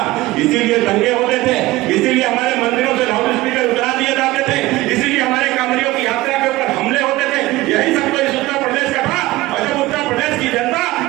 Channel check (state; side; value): quieter; left; 18.5 dB